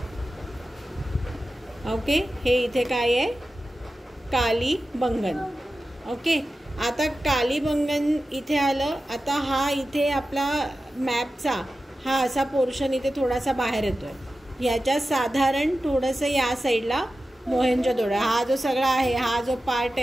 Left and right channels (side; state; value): both; normal; correlation 0.93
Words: ओके, हे इथे काय आहे कालीबंगन. ओके, आता कालीबंगन इथे आलं. आता हा इथे आपला मॅपचा हा असा पोर्शन इथे थोडासा बाहेर येतोय. ह्याच्या साधारण थोडंसं या साईडला मोहेंजोदडो, हा जो सगळा आहे, हा जो पार्ट